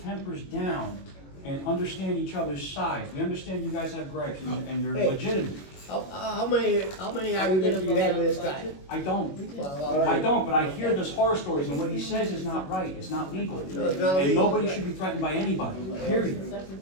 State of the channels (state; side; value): late; right; 21 ms